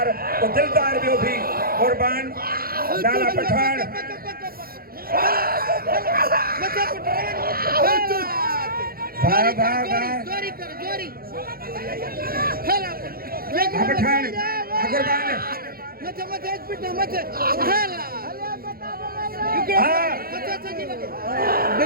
वो दिलदार भी भी कुर्बान लाला पठान जोरी पठान कुर्बान मत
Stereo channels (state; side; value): late; left; 0.43 ms